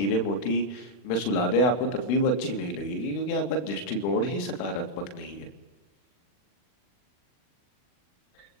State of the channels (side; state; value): right; late; 40 ms